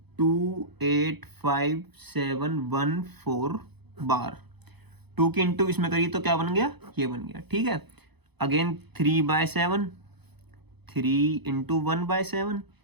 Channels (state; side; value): late; left; 0.98 ms